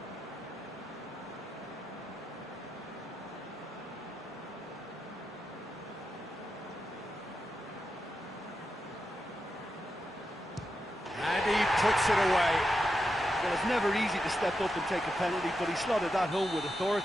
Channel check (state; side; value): normal; both; correlation 0.87